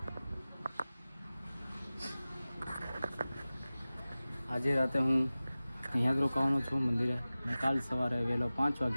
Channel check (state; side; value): inverted; both; correlation -0.97